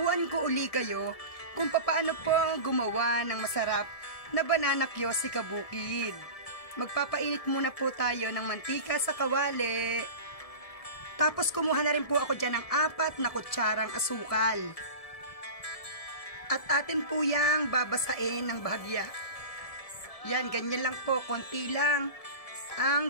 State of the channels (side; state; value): right; late; 1.6 ms